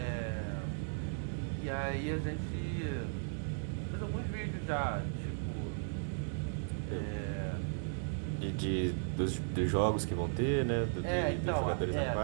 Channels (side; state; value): left; silent; 54 dB below the other